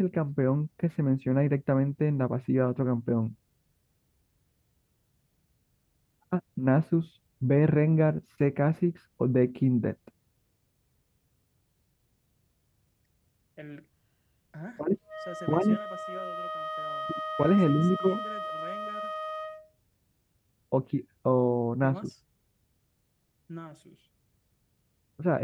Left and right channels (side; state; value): both; identical; correlation 1.00